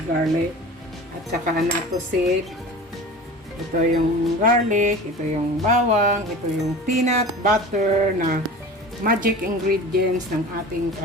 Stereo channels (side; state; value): both; normal; correlation 0.36